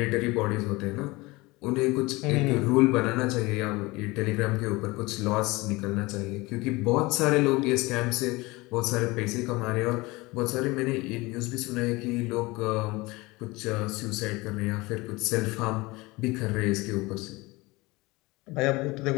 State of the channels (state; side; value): quieter; right; 22.7 dB